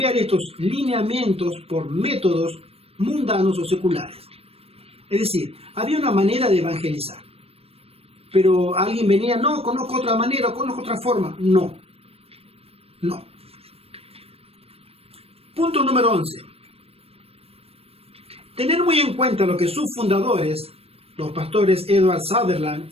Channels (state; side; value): late; left; 0.28 ms